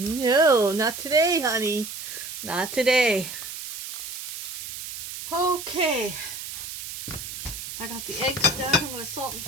not today, honey. Not today. Okay. I got the eggs done. I'm going to salt and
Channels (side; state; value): right; noise; hiss, 8 dB below the sound